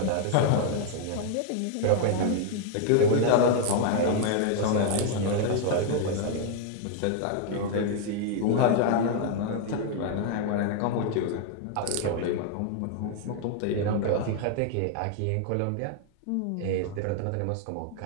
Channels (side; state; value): both; different; correlation 0.00